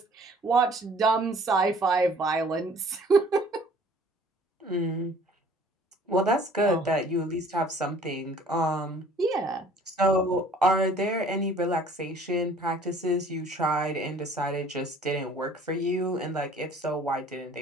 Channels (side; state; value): both; normal; correlation 0.53